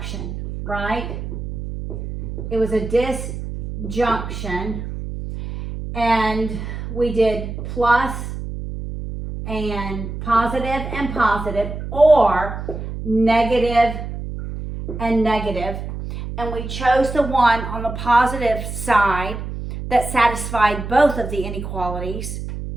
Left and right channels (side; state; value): right; noise; hum, 7 dB below the sound